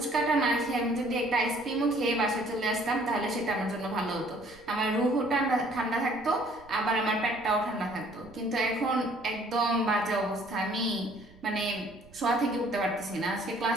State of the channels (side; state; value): right; noise; rumble, 25 dB below the sound